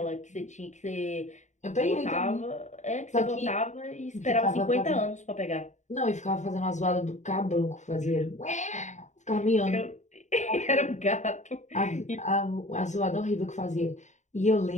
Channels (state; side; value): late; right; 0.34 ms